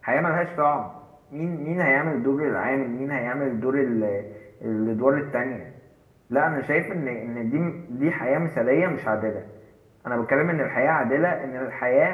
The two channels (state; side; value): identical; both; correlation 1.00